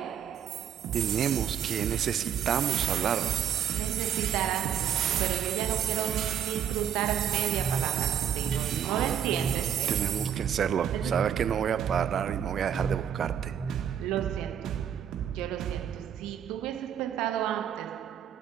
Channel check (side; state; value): left; quieter; 9.0 dB